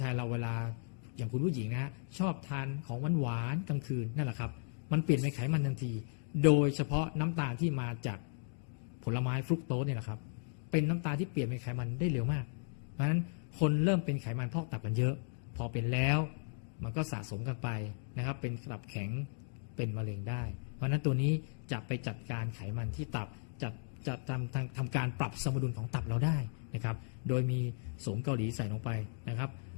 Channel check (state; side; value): silent; right; digital silence